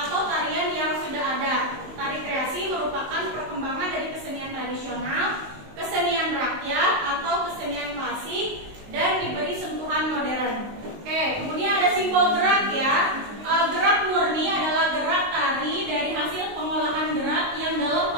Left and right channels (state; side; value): late; left; 19 ms